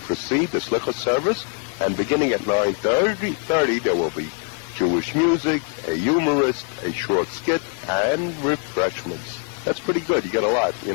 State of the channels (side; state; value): right; quieter; 38.6 dB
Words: the Slichot service, and beginning at 9:30 there will be Jewish music, a humorist, a short skit, and refreshments. That's pretty good. You get a lot, you